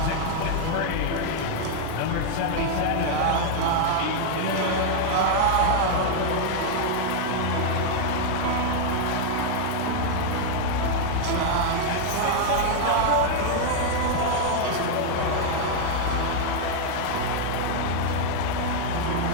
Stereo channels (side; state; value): both; different; correlation 0.00